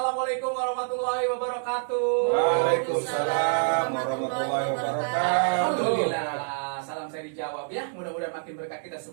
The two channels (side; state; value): left; silent; digital silence